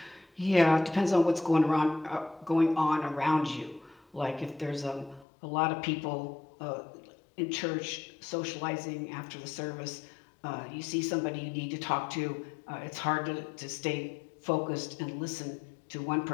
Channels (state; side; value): drops out; right; at 5.2 s